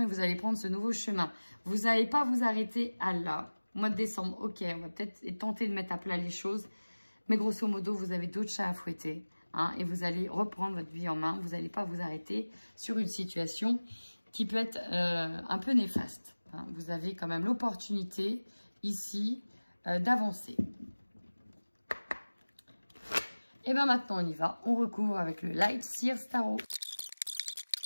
vous allez prendre ce nouveau chemin. Vous n'allez pas vous arrêter à là. Mois de décembre, ok, on va peut-être tenter de mettre à plat les choses. Mais grosso modo, vous avez d'autres chats à fouetter. Hein, et vous allez reprendre votre vie en main. Vous n'allez pas vous arrêter sur une situation qui peut être un peu néfaste. Hein. Vous avez quand même l'opportunité ici d'avancer. Et bien maintenant, on y va. On recouvre avec le Light Sears Tarot.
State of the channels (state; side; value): inverted; both; correlation -1.00